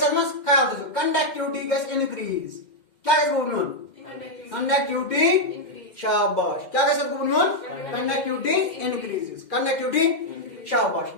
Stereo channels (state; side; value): late; right; 2.1 ms